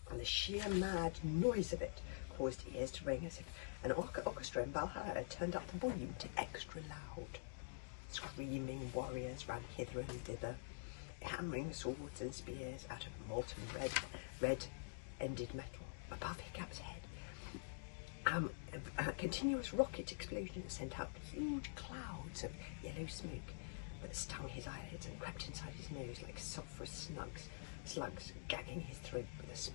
And the sheer mad noise of it caused ears to ring as if an orchestra in Valhalla had turned up the volume to extra loud. Screaming warriors ran hither and thither, hammering swords and spears out of molten red-ended metal. Above Hiccup's head, a continuous rocket explosion sent out huge clouds of yellow smoke that stung his eyelids and crept inside his nose like sulphurous slugs, gagging his throat with a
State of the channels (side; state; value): right; silent; digital silence